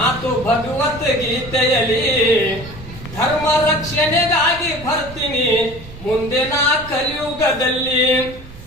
ಭಗವದ್ಗೀತೆಯಲ್ಲಿ, ಧರ್ಮ ರಕ್ಷಣೆಗಾಗಿ ಬರ್ತೀನಿ ಮುಂದೆ ನಾ ಕಲಿಯುಗದಲ್ಲಿ.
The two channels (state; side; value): noise; right; rumble, 18 dB below the sound